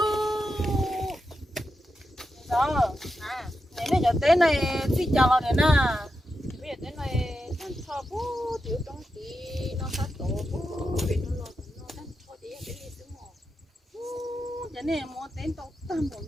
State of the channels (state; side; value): normal; both; correlation 0.88